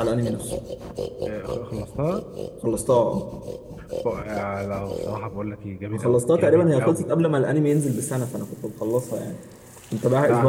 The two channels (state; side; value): identical; both; correlation 1.00